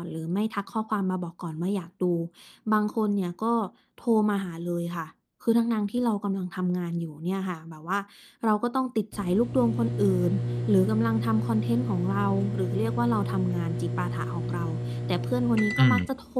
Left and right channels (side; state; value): both; identical; correlation 1.00